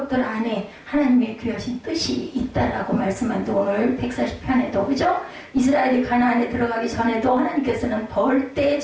안에 하나님의 귀하신 뜻이 있다라고 말씀한데 오늘 140편에도 그죠? 이스라엘이 가나안에 들어가기 전에도 하나님께서는 벌떼의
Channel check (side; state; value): both; identical; correlation 1.00